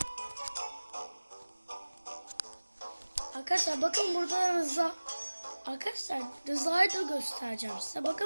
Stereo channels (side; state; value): both; inverted; correlation -1.00